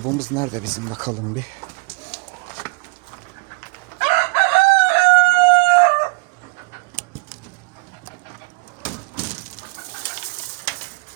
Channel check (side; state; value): left; quieter; 30.3 dB